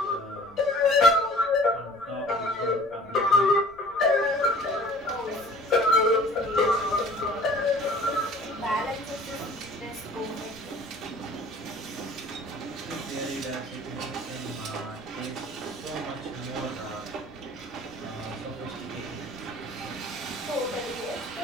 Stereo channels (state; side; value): noise; left; rumble, 27 dB below the sound